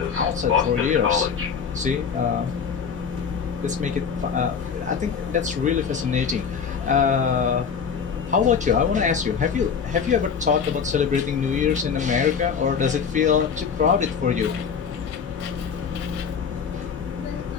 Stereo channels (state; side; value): quieter; right; 6.5 dB